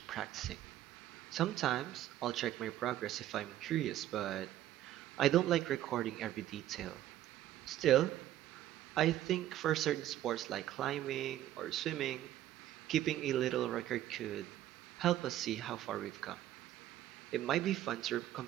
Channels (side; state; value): left; quieter; 13.1 dB